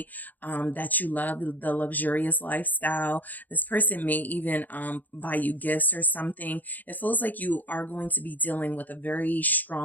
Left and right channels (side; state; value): right; late; 0.083 ms